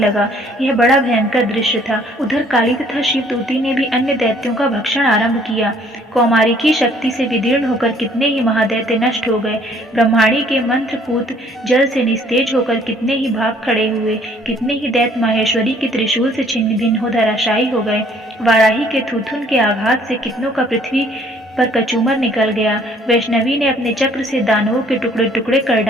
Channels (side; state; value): both; normal; correlation 0.60